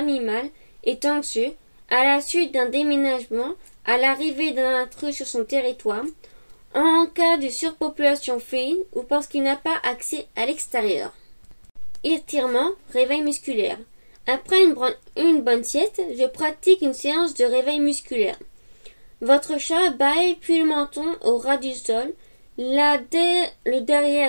est anxieux à la suite d'un déménagement, à l'arrivée d'un intrus sur son territoire, en cas de surpopulation féline ou parce qu'il n'a pas accès à l'extérieur. Étirement, réveil musculaire. Après une bonne sieste, je pratique une séance de réveil musculaire. Votre chat bâille puis le menton au ras du sol, le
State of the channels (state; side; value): inverted; both; correlation -1.00